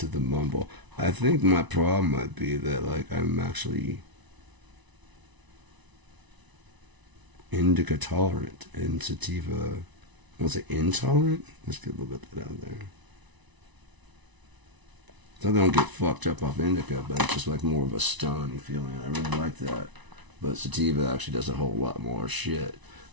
the mumble, I think my problem might be that like I'm actually indica tolerant and sativa, was it intolerant? Let's get a little bit of that out there. So I don't get fucked up off indica, but it's just like more of a stony feeling. I really like that. But sativa actually does a whole lot more shit.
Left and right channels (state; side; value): late; left; 1.0 ms